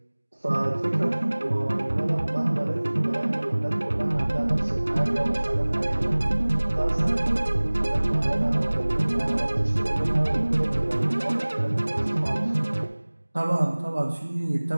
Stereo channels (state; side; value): inverted; both; correlation -1.00